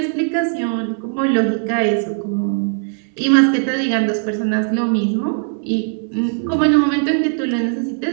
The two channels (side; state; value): left; silent; 67 dB below the other